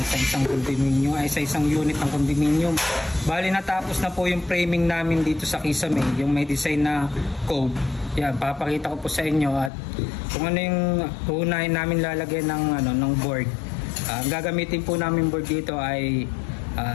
sa isang condominium, ay sa isang unit ng condominium. Bali natapos na po yung framing namin dito sa Kisame, yung may design na cove. Yan, papakita ko po sa inyo at kung ano yung uunahin namin lalagyan ng board. Ang gagamitin po namin board dito ay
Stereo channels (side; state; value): right; drops out; at 9.7 s